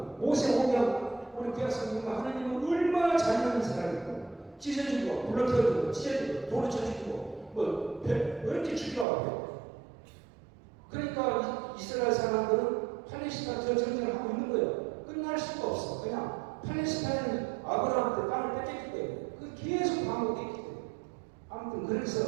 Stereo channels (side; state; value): left; drops out; at 9.1 s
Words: 모세 오경 우리 구약성경은 하나님은 얼마나 잘하는 사람이고 찢어주고 불러태우고 찢어주고 돌을 쳐주고 뭐 이렇게 죽이라고. 그러니까 이스라엘 사람들은 팔레스타인 저 전쟁을 하고 있는 거예요. 끝날 수가 없어. 그냥 팔레스타인은 아브라함한테 땅을 뺏겼기 때문에 그 계속 반복했기 때문에 아무튼